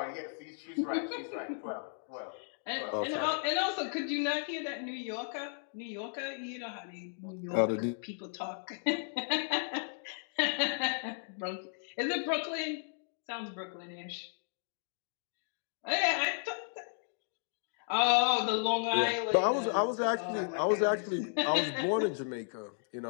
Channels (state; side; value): silent; right; digital silence